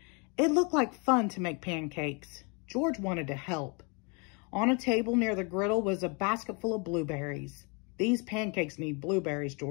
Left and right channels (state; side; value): quieter; right; 32.6 dB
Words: It looked like fun to make pancakes. George wanted to help. On a table near the griddle was a basket full of blueberries. These pancakes need blueberries,